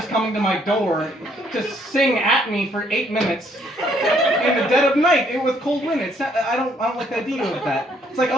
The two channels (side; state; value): both; normal; correlation 0.68